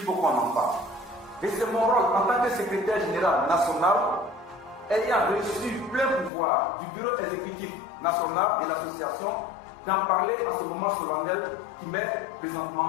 qu'on en parle. Et c'est mon rôle en tant que secrétaire général national, ayant reçu plein pouvoir du bureau exécutif national de l'association, d'en parler à ce moment solennel qui m'est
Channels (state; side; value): drops out; right; at 6.3 s